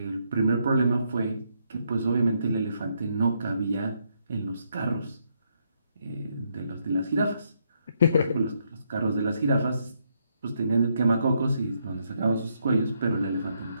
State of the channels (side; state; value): both; inverted; correlation -0.76